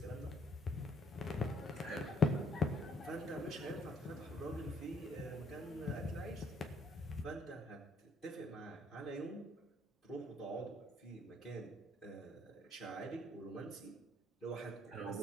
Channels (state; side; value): normal; both; correlation 0.67